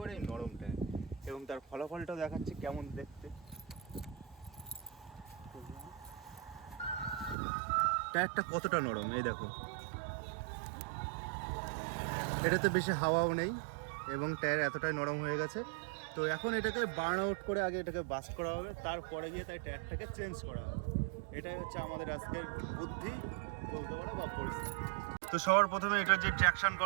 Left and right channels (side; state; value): left; drops out; at 7.4 s